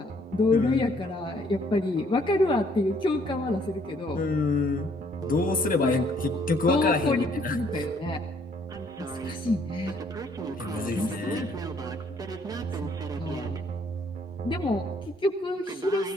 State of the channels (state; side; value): normal; both; correlation 0.64